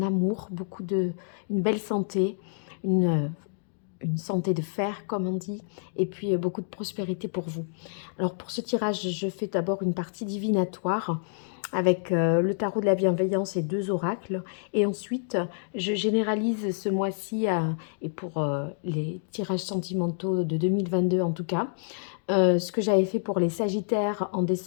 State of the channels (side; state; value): right; silent; digital silence